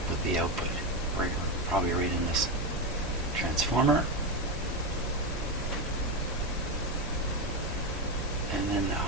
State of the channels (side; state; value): both; normal; correlation 0.12